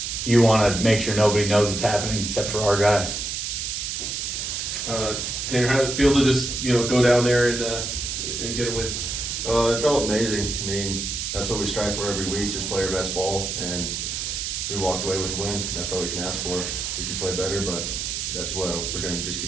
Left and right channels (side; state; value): right; noise; hiss, 3 dB below the sound